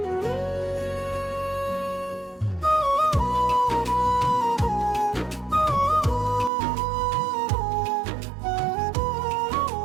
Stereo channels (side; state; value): left; drops out; at 6.5 s